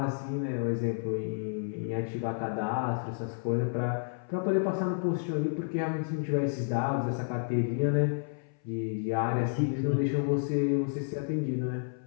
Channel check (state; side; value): silent; right; 57 dB below the other